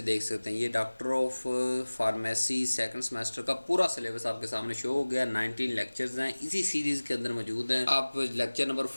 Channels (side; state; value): both; inverted; correlation -1.00